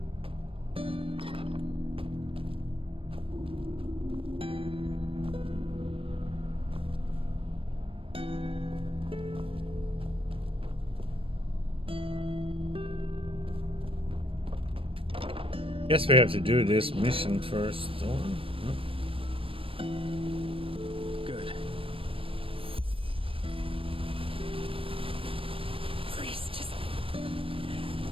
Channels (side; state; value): left; late; 0.26 ms